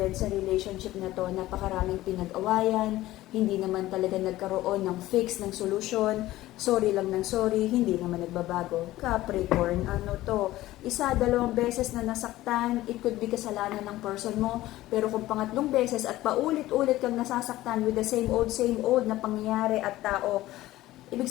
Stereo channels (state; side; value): quieter; right; 16.2 dB